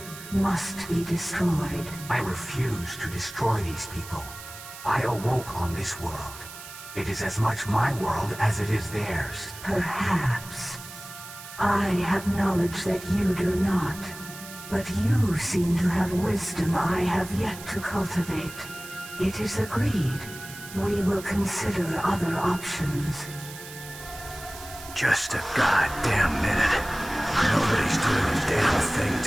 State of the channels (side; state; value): right; noise; hiss, 14 dB below the sound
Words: must be destroyed. I refuse to destroy these people. I awoke on this world. It is as much my world as it is theirs. Perhaps. I have knowledge that you do not. But you seem to have wisdom I have yet to cultivate. It is agreed. We will consider other options. Just a goddamn minute. Nobody's doing a damn thing